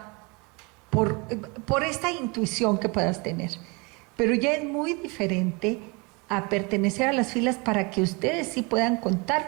por esta intuición que puedas tener. Pero ya es muy diferente a pertenecer a las filas para que ustedes sí puedan contar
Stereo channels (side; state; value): left; quieter; 28.8 dB